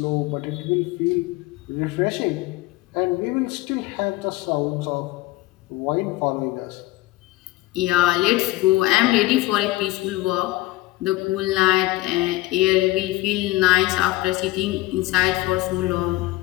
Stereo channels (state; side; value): quieter; right; 18.4 dB